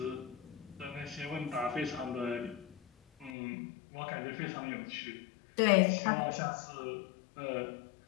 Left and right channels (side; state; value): right; drops out; at 3.3 s